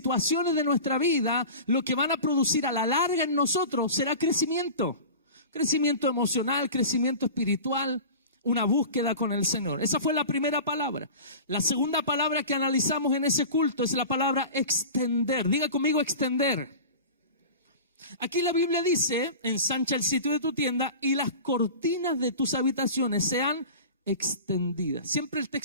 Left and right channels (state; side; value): inverted; both; correlation -0.35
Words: de nuestra vida, lo que van a producir a la larga en nosotros será crecimiento. Crecimiento emocional, crecimiento espiritual, una búsqueda con el Señor. Esa fue la primera palabra. La segunda palabra que analizamos en ese culto es la palabra extender. Diga conmigo extender. Aquí la Biblia dice, ensancha el sitio de tu tienda y las cortinas de tus habitaciones sean extendidas. Siempre el